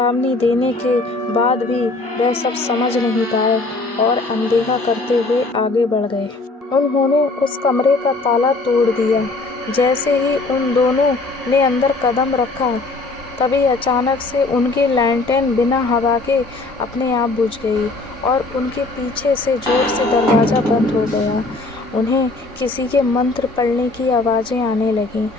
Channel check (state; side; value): quieter; right; 3.3 dB